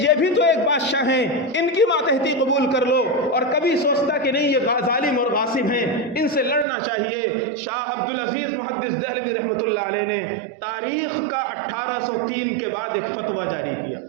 بھی تو ایک بادشاہ ہیں، ان کی ماتحتی قبول کر لو، اور کبھی سوچتا کہ نہیں یہ ظالم اور غاصب ہیں، ان سے لڑنا چاہیے۔ شاہ عبدالعزیز محدث دہلوی رحمۃ اللہ علیہ نے تاریخ کا 1803 کے بعد ایک فتویٰ جاری کیا۔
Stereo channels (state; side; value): drops out; left; at 6.7 s